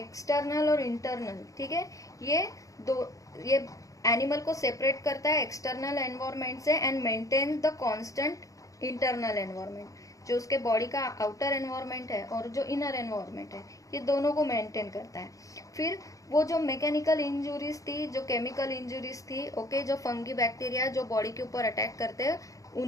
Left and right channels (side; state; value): right; late; 0.16 ms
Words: और इंटरनल. ठीक है, ये एनिमल को सेपरेट करता है एक्सटर्नल एनवायरनमेंट से and maintain the constant internal environment. जो उसके बॉडी का आउटर एनवायरनमेंट है और जो इनर एनवायरनमेंट है ये दोनों को मेंटेन करता है. फिर वो जो मैकेनिकल इंजुरीज थी, जो केमिकल इंजुरीज थी, ओके, जो फंगी बैक्टीरिया जो बॉडी के ऊपर अटैक करते हैं